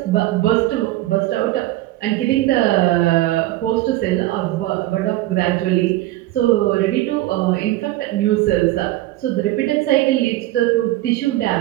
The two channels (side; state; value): left; quieter; 16.6 dB